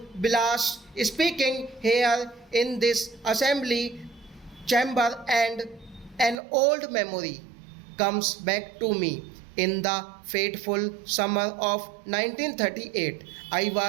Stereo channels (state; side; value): drops out; left; at 6.4 s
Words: blasts. Speaking here in this assembly chamber, and an old memory comes back to me. In the fateful summer of 1938, I